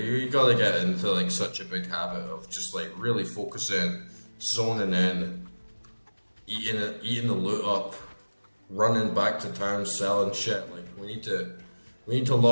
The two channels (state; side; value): inverted; both; correlation -1.00